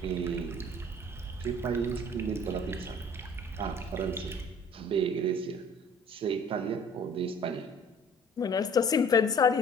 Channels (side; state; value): both; normal; correlation 0.50